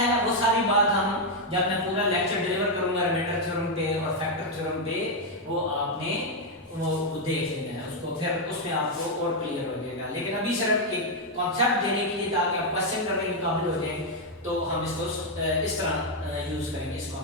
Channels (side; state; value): both; normal; correlation 0.01